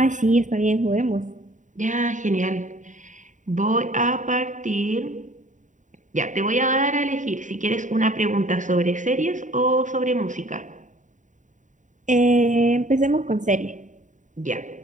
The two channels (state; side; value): late; left; 0.36 ms